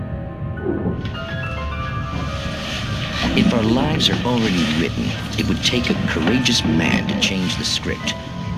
If our lives are already written, it would take a courageous man to change the script.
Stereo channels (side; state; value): both; identical; correlation 1.00